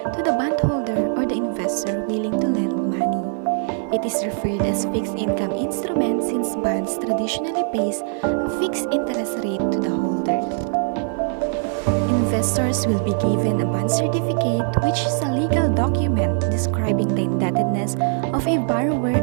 to the bondholder or the investor willing to lend money. It is referred as fixed income instrument since bonds traditionally pays a fixed interest rate to the holder. Investors will be given a bond certificate, which is a legal document describing the indebtedness of a borrower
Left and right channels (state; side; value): silent; left; 61 dB below the other